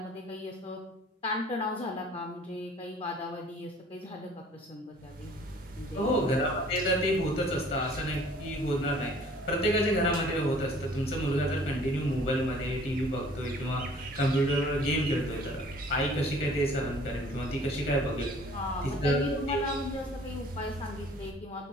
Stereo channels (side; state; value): both; normal; correlation 0.53